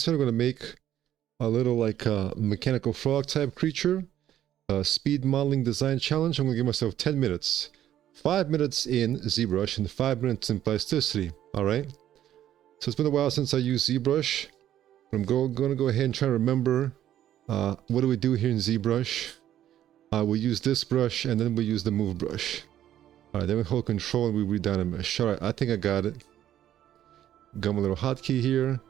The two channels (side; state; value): left; quieter; 11.7 dB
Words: time I'm going to make a little like mechanical frog type creature. Speed modeling design challenge. I'm going to give myself 10 minutes. 5 minutes in ZBrush and 5 minutes in Plasticity. Alright? So it's been a while since I used ZBrush. I'm going to go ahead and try to remember what do we do here in ZBrush. We use this brush and then we use the move brush. Alright, then we hold control and we read down a mesh. Alright, I think I got it. Got my little hotkey here.